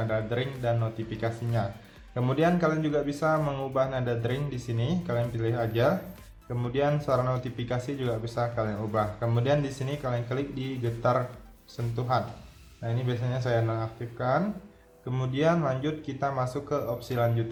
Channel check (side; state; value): both; identical; correlation 1.00